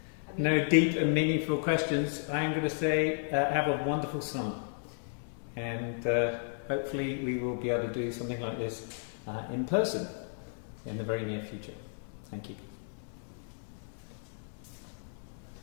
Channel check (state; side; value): silent; right; digital silence